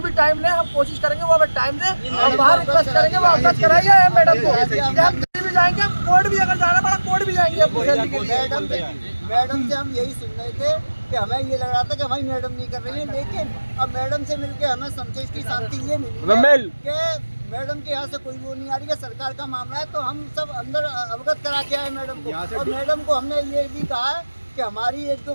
टाइम लें, हम कोशिश करेंगे वो हमें टाइम दें, हम वहाँ रिक्वेस्ट करेंगे वो अवगत कराइए मैडम को। हम दिल्ली भी जाएंगे, कोर्ट भी अगर जाना पड़ा कोर्ट भी जाएंगे। मैडम से हम यही सुन रहे थे कि हमें ये लग रहा था कि हमारी मैडम नहीं कर रही है, लेकिन अब मैडम से मिलके हमें संतोष की शांति ये मिली कि मैडम के यहाँ से कोई वो नहीं आ रही है। सरकार का मामला है तो हम सब अंदर अवगत करा के आए मैडम को, और मैडम को हमने ये भी कहा है कि हमारी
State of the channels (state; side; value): inverted; both; correlation -1.00